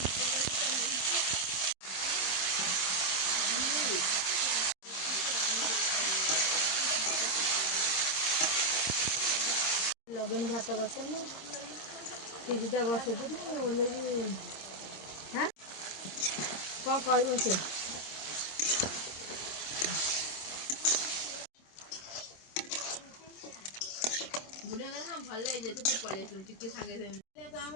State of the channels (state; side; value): late; right; 26 ms